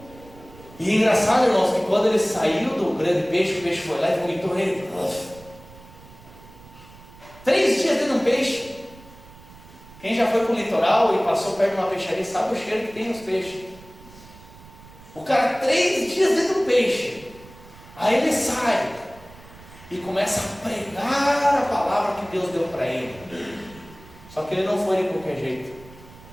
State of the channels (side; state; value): right; noise; rumble, 21 dB below the sound